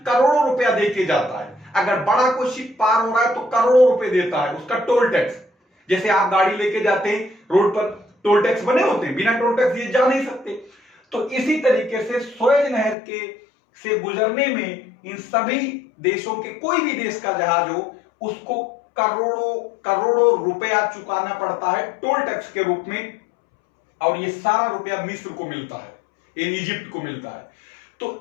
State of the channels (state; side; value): drops out; right; at 13.0 s